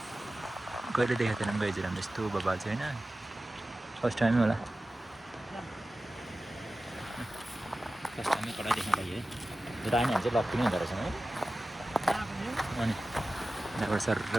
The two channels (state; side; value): normal; both; correlation 0.95